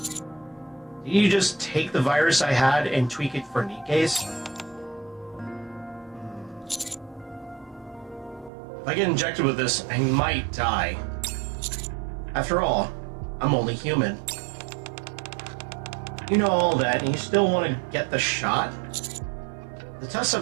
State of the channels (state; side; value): drops out; left; at 8.5 s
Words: you just take the virus I had and tweak it for Nikkes? If I get injected with this, I might die. After all, I'm only human. You know all that, and you still want to get the shot? If the test